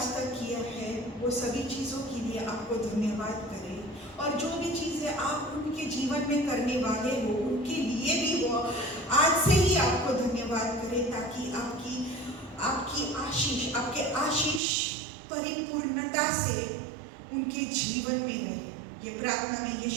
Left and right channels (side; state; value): left; drops out; at 14.6 s